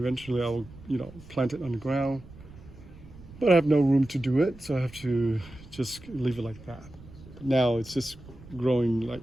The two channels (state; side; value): noise; right; rumble, 19 dB below the sound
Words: I will plant it on the ground, but I have no room to do it, so I have to just leave it like that. But now it's just growing